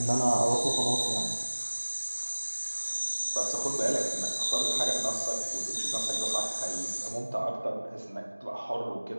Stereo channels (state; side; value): inverted; both; correlation -1.00